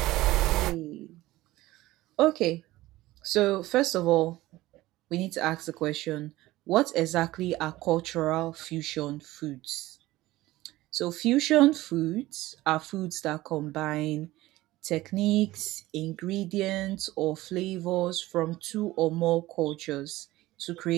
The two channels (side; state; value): left; quieter; 17.5 dB